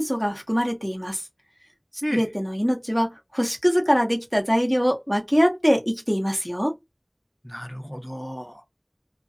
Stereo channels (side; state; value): both; identical; correlation 1.00